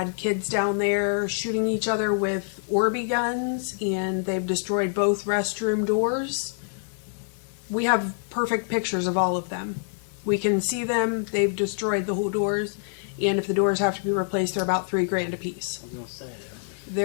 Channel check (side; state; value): right; silent; digital silence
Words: kids down there shooting each other with Orby guns, and they've destroyed both restroom doors. We have perfect pictures of all of them. We can see them. They've destroyed the whole doors, and if the doors have to be replaced, they're about $3,000 a piece. I was gonna say